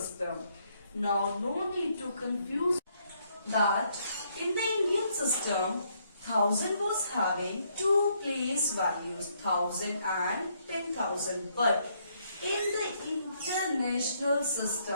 Now, no need to confuse that in the Indian system, 1000 was having 2 place values, 1000 and 10,000. But in the international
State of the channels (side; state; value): both; inverted; correlation -0.71